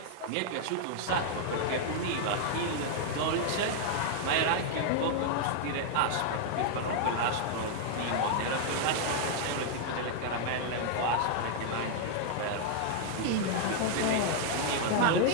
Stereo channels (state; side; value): different; both; correlation 0.00